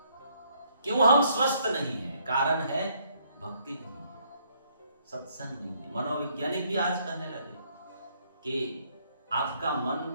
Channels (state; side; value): inverted; both; correlation -0.68